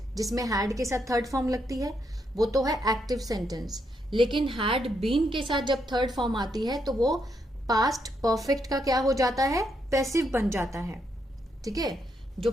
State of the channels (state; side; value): normal; both; correlation 0.78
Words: जिसमें हैड के साथ थर्ड फॉर्म लगती है, वो तो है एक्टिव सेंटेंस। लेकिन हैड बीन के साथ जब थर्ड फॉर्म आती है तो वो पास्ट परफेक्ट का क्या हो जाता है, पैसिव बन जाता है। ठीक है, जो